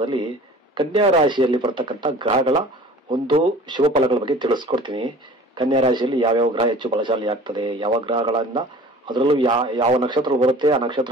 ಕನ್ಯಾ ರಾಶಿಯಲ್ಲಿ ಬರ್ತಕ್ಕಂಥ ಗ್ರಹಗಳ ಒಂದು ಶುಭ ಫಲಗಳ ಬಗ್ಗೆ ತಿಳಿಸ್ಕೊಡ್ತೀನಿ. ಕನ್ಯಾ ರಾಶಿಯಲ್ಲಿ ಯಾವ್ಯಾವ ಗ್ರಹ ಹೆಚ್ಚು ಬಲಶಾಲಿ ಆಗ್ತದೆ, ಯಾವ ಗ್ರಹಗಳಿಂದ, ಅದರಲ್ಲೂ ಯಾವ ನಕ್ಷತ್ರ ಬರುತ್ತೆ, ಆ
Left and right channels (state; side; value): normal; both; correlation 0.44